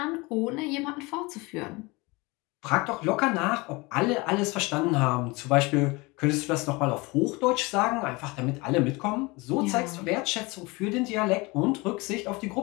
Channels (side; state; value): right; quieter; 24.8 dB